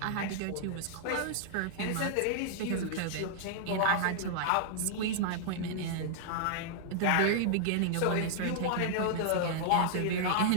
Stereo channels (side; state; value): both; different; correlation -0.01